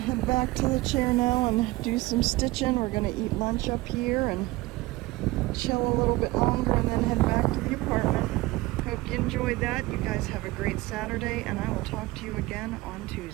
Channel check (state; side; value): quieter; left; 20.0 dB